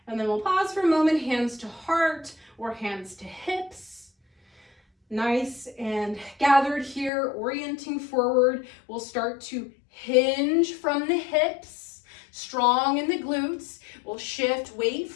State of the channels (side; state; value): right; drops out; at 7.1 s